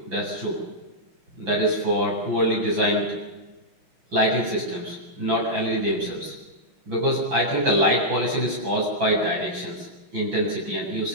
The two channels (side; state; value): left; late; 5.9 ms